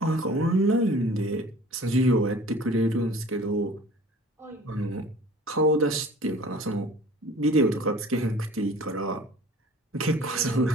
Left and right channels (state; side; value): normal; both; correlation 0.46